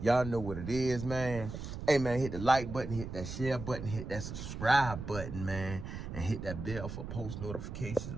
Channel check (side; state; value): right; noise; rumble, 8 dB below the sound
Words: y'all know what it is, man. Hey, man, hit the like button, hit that share button, hit that subscribe button, man, and hit that bell for post notifications,